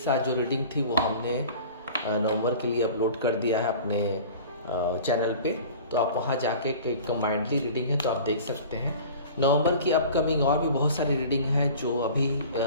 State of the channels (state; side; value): inverted; both; correlation -0.42